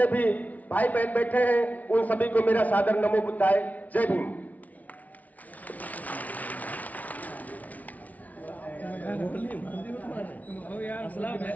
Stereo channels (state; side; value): late; right; 0.072 ms